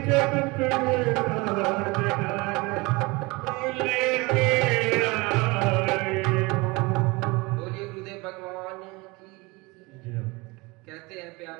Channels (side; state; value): left; quieter; 24.7 dB